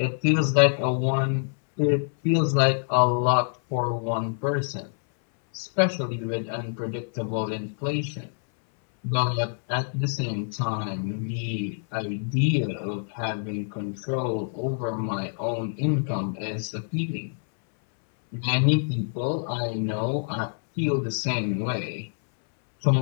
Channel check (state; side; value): silent; right; 61 dB below the other